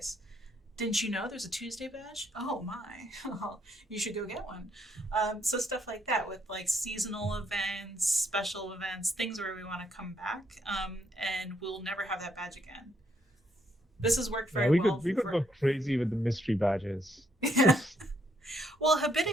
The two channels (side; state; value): both; normal; correlation 0.73